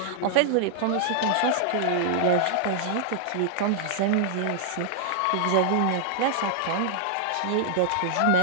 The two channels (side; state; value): both; different; correlation -0.01